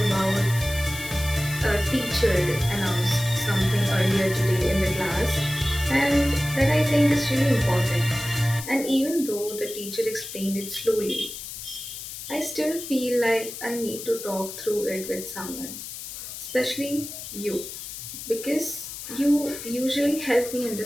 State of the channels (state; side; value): noise; left; hiss, 10 dB below the sound